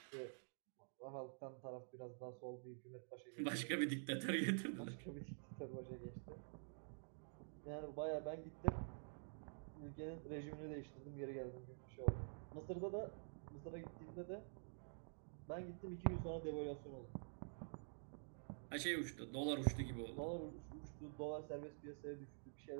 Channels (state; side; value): silent; left; digital silence